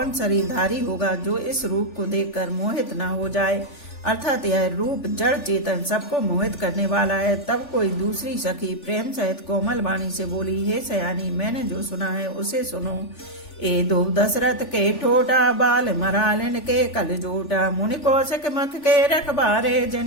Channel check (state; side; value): late; right; 3.4 ms